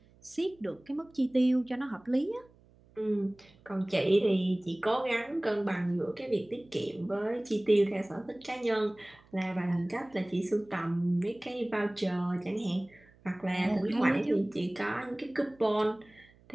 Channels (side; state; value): right; noise; hum, 28 dB below the sound